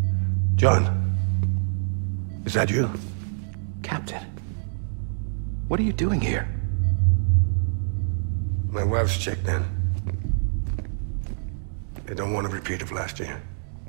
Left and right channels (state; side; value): silent; left; digital silence